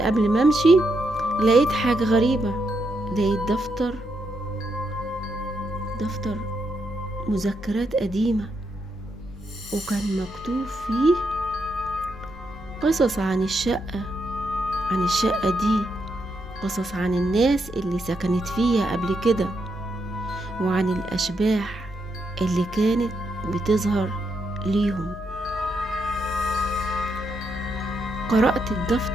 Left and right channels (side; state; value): right; noise; hum, 20 dB below the sound